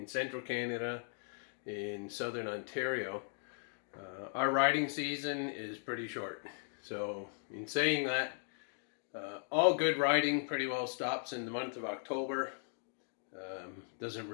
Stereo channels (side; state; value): right; silent; 53 dB below the other